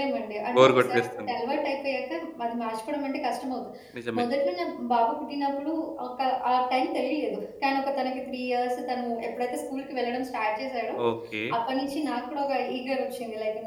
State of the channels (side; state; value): both; identical; correlation 1.00